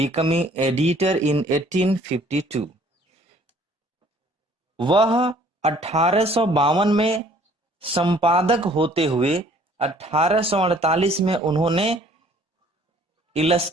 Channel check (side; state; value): both; normal; correlation 0.57